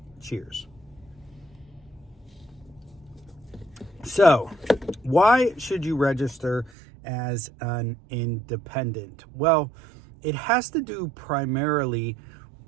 Cheers. So, why should you register as an independent? Well, it has to do primarily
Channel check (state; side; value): drops out; left; at 6.7 s